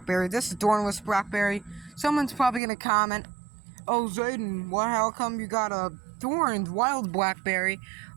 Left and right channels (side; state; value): left; drops out; at 2.6 s